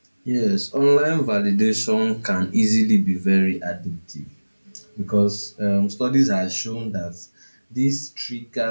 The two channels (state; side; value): inverted; both; correlation -1.00